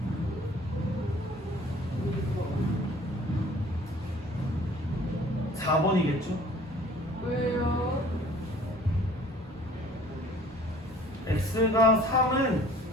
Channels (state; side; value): normal; both; correlation 0.51